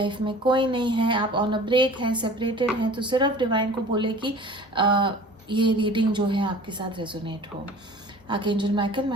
में कोई नहीं है, आप ऑन अ ब्रेक हैं, सेपरेटेड हैं, तो सिर्फ डिवाइन को बोले कि ये रीडिंग जो है आपके साथ रेजोनेट हो। Archangel Michael, my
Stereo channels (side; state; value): both; normal; correlation 0.44